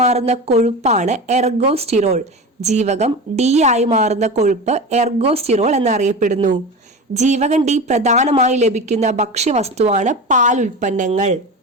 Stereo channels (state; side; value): normal; both; correlation 0.28